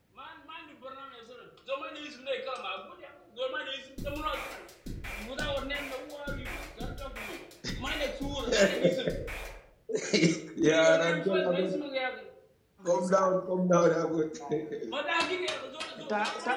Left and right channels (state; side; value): identical; both; correlation 1.00